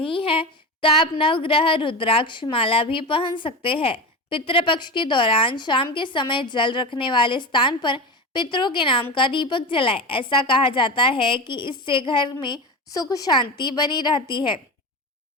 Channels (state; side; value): normal; both; correlation 0.23